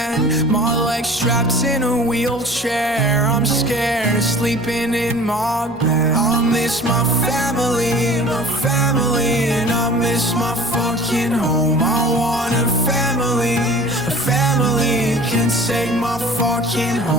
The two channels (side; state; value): both; normal; correlation 0.44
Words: My legs strapped in a wheelchair, I'm scared of sleeping in my bed. I miss my family, and I miss my fucking home. I want a family can take my fucking